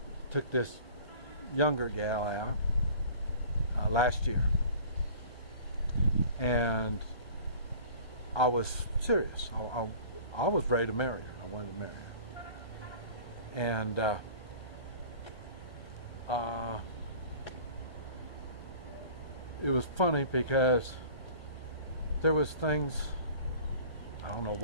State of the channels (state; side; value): late; right; 1.3 ms